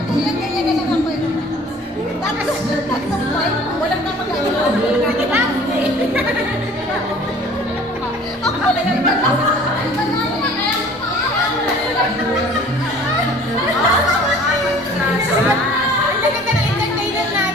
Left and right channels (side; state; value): both; normal; correlation 0.49